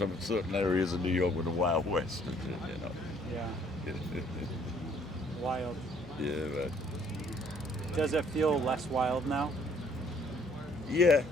certain areas of New York with the Wild West, you know. Yeah. Wild. Yeah, but Does it feel less wild now? yeah.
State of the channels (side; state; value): both; normal; correlation 0.62